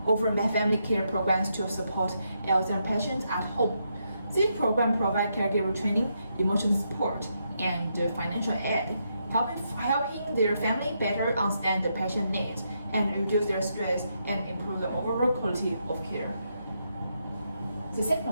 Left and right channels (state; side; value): inverted; both; correlation -0.80